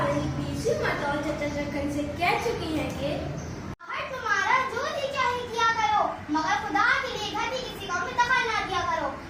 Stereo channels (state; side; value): identical; both; correlation 1.00